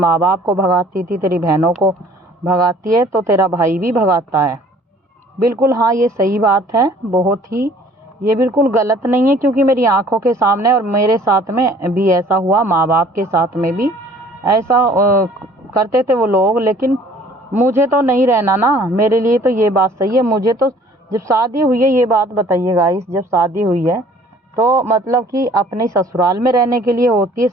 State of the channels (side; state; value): both; normal; correlation 0.54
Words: बाप को भगाती थी, तेरी बहनों को भगाती है, तो तेरा भाई भी भगाता है। बिल्कुल हाँ, ये सही बात है, बहुत ही, ये बिल्कुल गलत नहीं है, क्योंकि मेरी आंखों के सामने और मेरे साथ में भी ऐसा हुआ, माँ बाप के साथ में भी ऐसा करते थे वो लोग। लेकिन मुझे तो नहीं रहना ना, मेरे लिए तो ये बात सही है। मुझे तो जब शादी हुई है, ये बात बताइए गाइस, जब शादी हुई है तो मतलब कि अपने ससुराल में रहने के लिए होती है